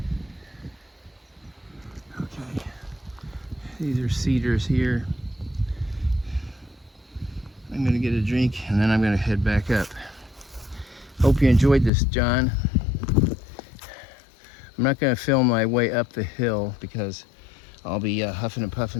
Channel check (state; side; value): drops out; right; at 11.9 s